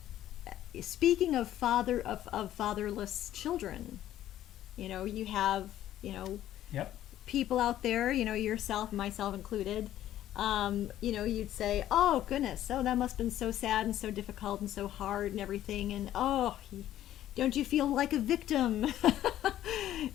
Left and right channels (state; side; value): quieter; right; 12.6 dB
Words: speaking of fatherless children, you have people out there, yourself, myself included. You'd say, oh goodness, that must have been so sad and so difficult and so hard and everything, and don't you feel like a victim?